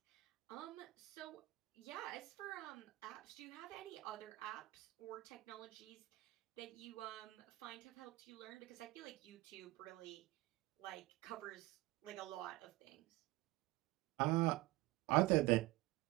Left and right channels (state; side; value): quieter; left; 18.8 dB